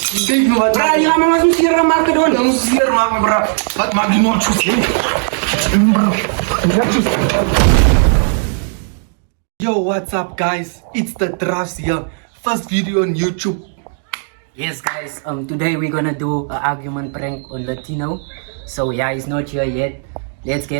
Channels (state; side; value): silent; left; 64 dB below the other